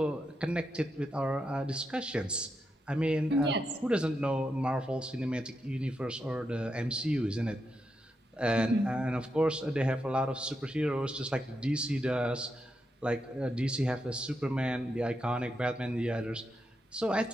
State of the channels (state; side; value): normal; both; correlation 0.84